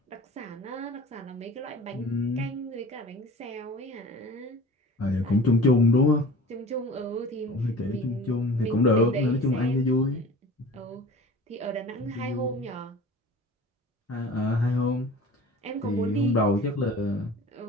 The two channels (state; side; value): normal; both; correlation 0.41